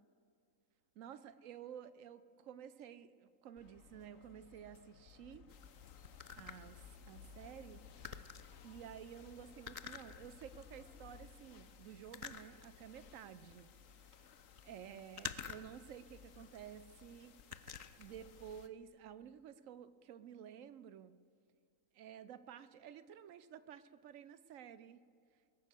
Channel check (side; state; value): left; late; 3.8 ms